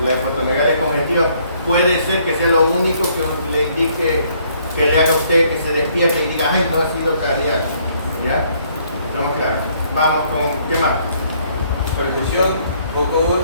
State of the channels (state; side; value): inverted; both; correlation -0.65